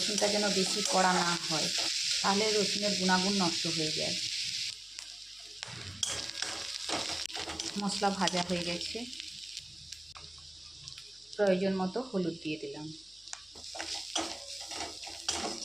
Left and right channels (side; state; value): left; noise; hum, 30 dB below the sound